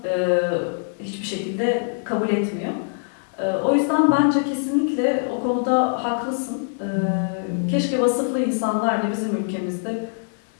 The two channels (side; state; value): right; silent; 63 dB below the other